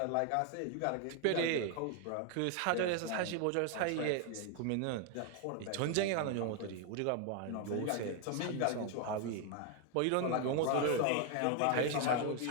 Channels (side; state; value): both; different; correlation 0.01